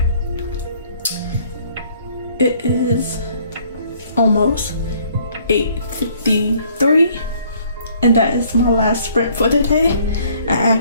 It is almost 8:53, and that is my last sprint for the day. I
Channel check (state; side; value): inverted; both; correlation -0.61